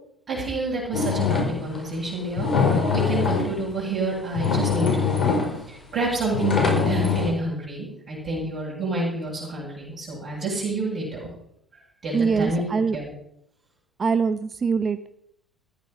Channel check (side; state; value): both; normal; correlation 0.49